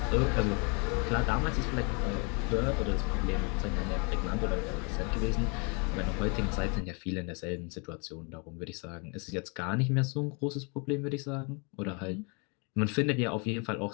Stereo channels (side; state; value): right; quieter; 33.9 dB